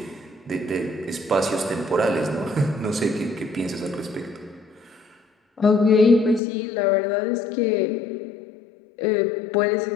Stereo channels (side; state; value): right; drops out; at 6.4 s